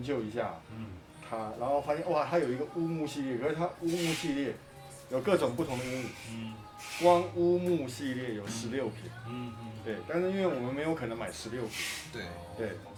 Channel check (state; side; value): identical; both; correlation 1.00